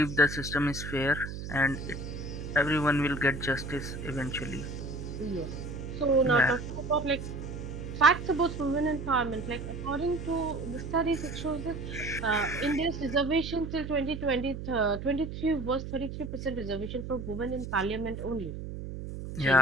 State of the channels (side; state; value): right; noise; hum, 7 dB below the sound